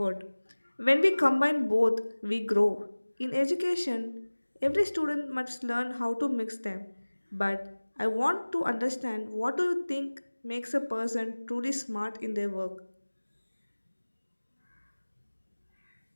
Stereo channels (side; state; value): both; inverted; correlation -1.00